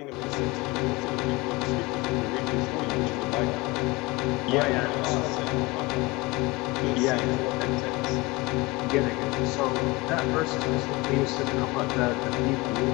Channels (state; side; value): quieter; right; 23.4 dB